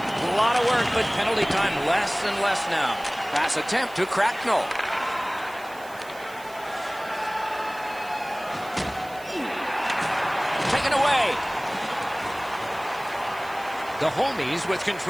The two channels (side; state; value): right; noise; hiss, 21 dB below the sound